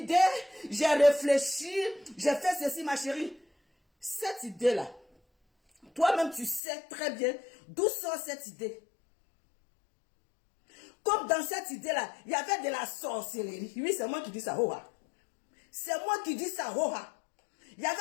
j'ai réfléchi, j'ai fait ceci, ma chérie. Cette idée-là, toi-même, tu sais très bien d'où sort cette idée. Comme dans cette idée-là, il y avait de la sorcellerie. Oui, c'est moi qui dis ça, Hoha. C'est moi qui dis ça, Hoha. Il y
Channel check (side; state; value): right; drops out; at 6.6 s